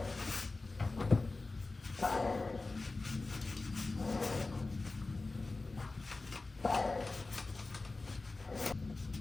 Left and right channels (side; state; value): right; quieter; 3.4 dB